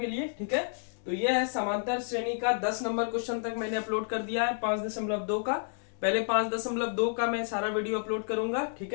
लिए। ठीक है, तो ये है समांतर श्रेणी का 10 नंबर क्वेश्चन तक मैंने अपलोड कर दिया है 5.2 का। पहले 5.2 का मैं सारा वीडियो अपलोड करूंगा, ठीक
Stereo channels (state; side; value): silent; right; digital silence